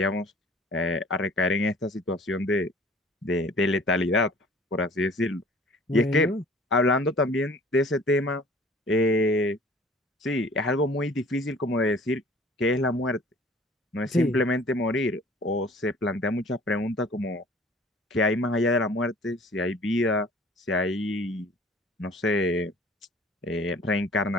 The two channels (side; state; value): both; normal; correlation 0.50